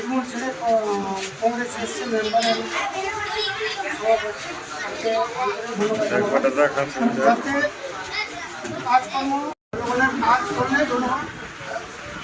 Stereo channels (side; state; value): both; identical; correlation 1.00